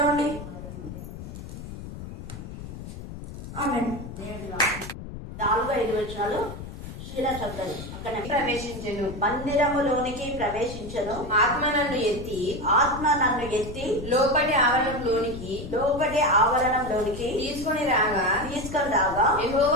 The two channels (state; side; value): noise; left; rumble, 10 dB below the sound